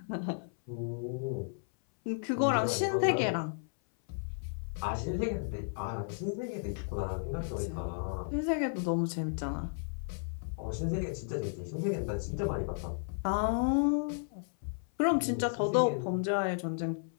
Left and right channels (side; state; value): right; silent; 55 dB below the other